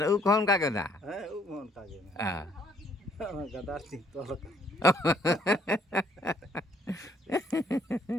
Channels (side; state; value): both; normal; correlation 0.64